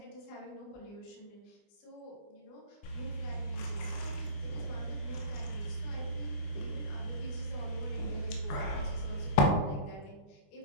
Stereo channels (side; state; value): right; late; 20 ms